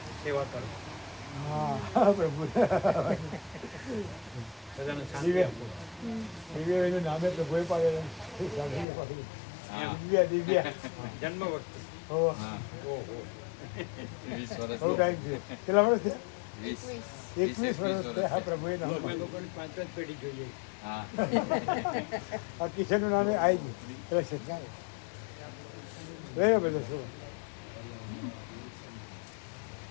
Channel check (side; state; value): right; drops out; at 8.8 s